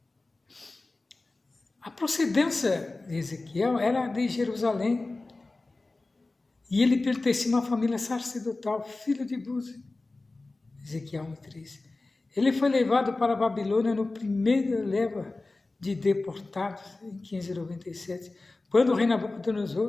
A procedência de Ezequiel era de Jerusalém e ele pertencia a uma família sacerdotal, filho de Buzi. Ezequiel 1:3. Ele foi levado para a Babilônia no primeiro leva de deportados, em 597, quando o rei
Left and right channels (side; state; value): right; quieter; 3.2 dB